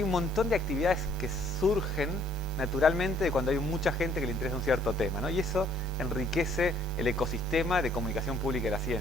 un montón de actividades que surgen naturalmente cuando hay mucha gente que le interesa un cierto tema, ¿no? Y eso enriquece el ecosistema de comunicación pública de la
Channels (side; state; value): both; normal; correlation 0.64